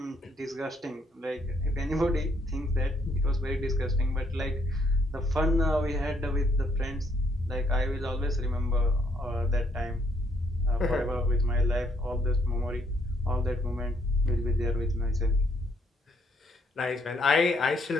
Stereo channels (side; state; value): both; normal; correlation 0.70